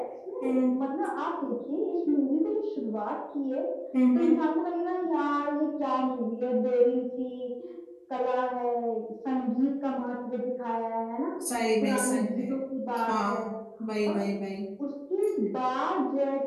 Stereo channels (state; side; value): identical; both; correlation 1.00